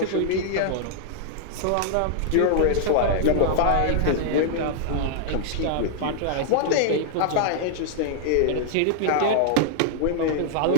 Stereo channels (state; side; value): different; both; correlation -0.01